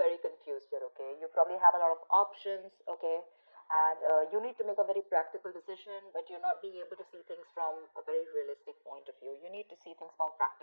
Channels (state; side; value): inverted; both; correlation -1.00